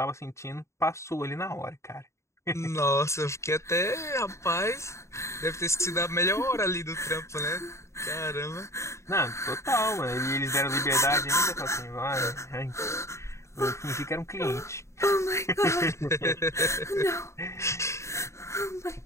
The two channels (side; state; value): right; late; 0.14 ms